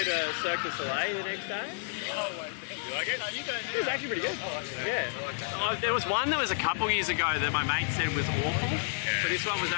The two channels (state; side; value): silent; right; digital silence